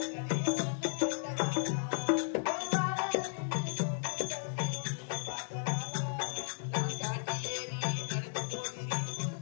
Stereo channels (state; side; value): silent; right; digital silence